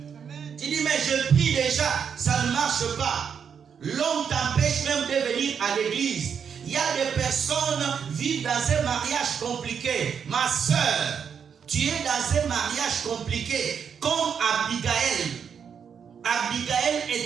Tu dis, mais je prie déjà, ça ne marche pas. L'homme t'empêche même de venir à l'église. Il y a des personnes qui vivent dans un mariage compliqué. Ma soeur, tu es dans un mariage compliqué, comme Abigail. Abigail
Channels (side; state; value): left; quieter; 7.1 dB